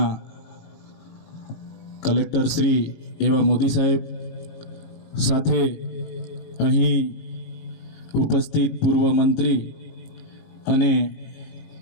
કલેક્ટર શ્રી એવા મોદી સાહેબ, સાથે અહીં ઉપસ્થિત પૂર્વ મંત્રી અને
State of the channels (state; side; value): late; right; 18 ms